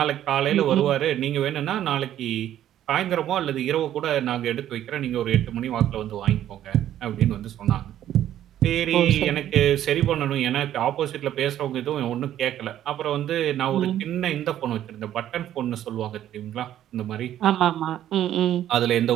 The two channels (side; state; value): left; quieter; 11.7 dB